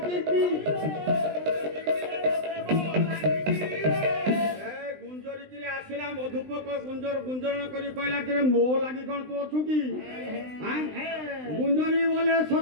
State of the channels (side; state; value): left; late; 20 ms